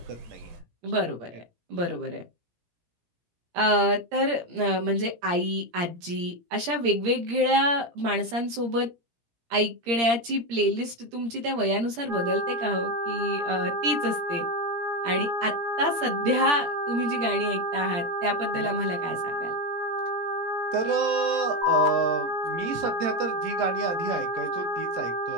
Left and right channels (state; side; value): late; left; 17 ms